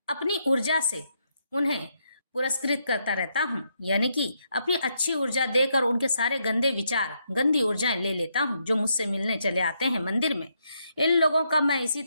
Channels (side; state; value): both; inverted; correlation -0.78